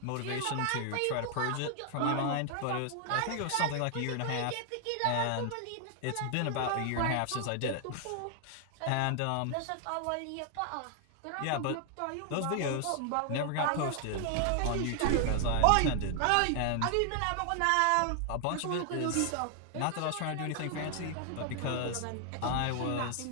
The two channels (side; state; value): both; different; correlation 0.00